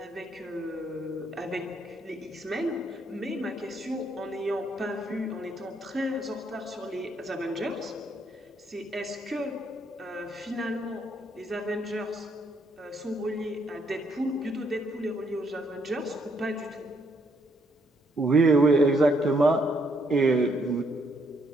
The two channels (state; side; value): normal; both; correlation 0.72